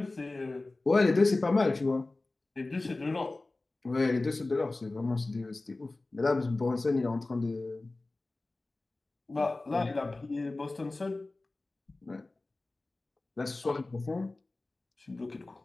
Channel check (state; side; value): quieter; right; 3.1 dB